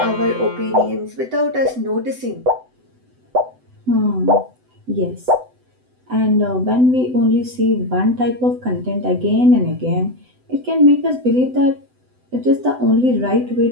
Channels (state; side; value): late; left; 7.9 ms